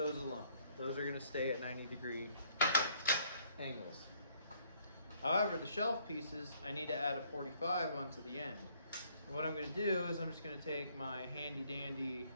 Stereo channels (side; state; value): both; inverted; correlation -0.64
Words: alone. Those are going to stay at 90-degree angles. However, the shelf pieces, I need to add a 45 onto the end. And what I'm going to do is I'm just going to take my handy dandy